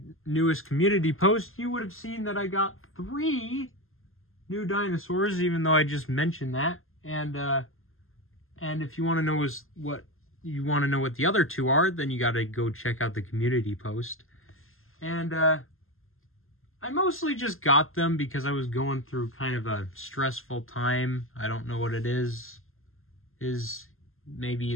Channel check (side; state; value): right; late; 0.61 ms